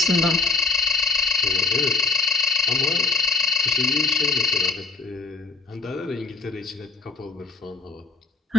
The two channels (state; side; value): quieter; right; 4.2 dB